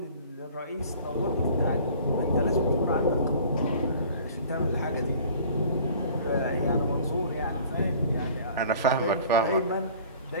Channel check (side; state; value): both; inverted; correlation -0.48